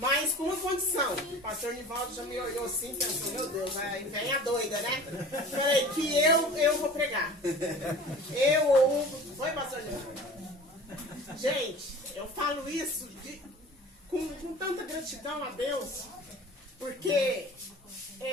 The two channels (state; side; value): normal; both; correlation 0.41